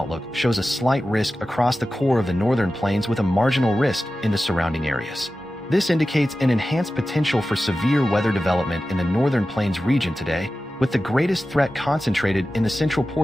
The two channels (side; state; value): both; normal; correlation 0.94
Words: shows a slight risk across the core of the northern plains with a marginal risk in the surrounding areas. This indicates an enhanced potential for severe weather development in the northern plains region today, with the greatest threat concentrated in the central